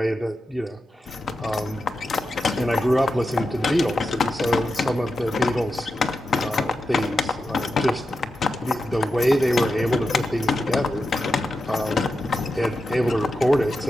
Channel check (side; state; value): both; normal; correlation 0.89